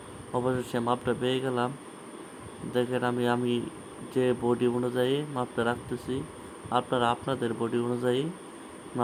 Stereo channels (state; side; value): identical; both; correlation 1.00